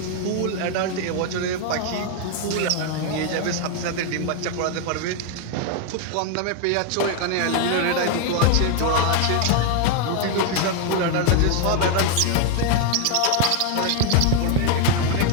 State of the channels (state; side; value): different; both; correlation 0.01